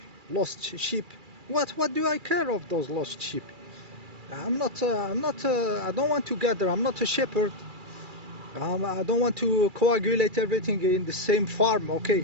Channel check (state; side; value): late; left; 2.3 ms